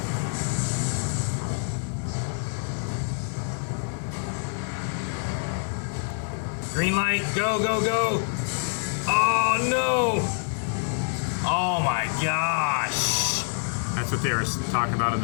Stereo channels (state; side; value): silent; right; digital silence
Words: Green light, go, go, go! Oh no! Oh my gosh! That's what they were talking about in